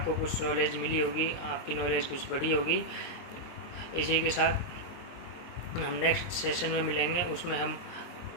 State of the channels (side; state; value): right; late; 23 ms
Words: कुछ नॉलेज मिली होगी, आपकी नॉलेज कुछ बढ़ी होगी. इसी के साथ हम नेक्स्ट सेशन में मिलेंगे, उसमें हम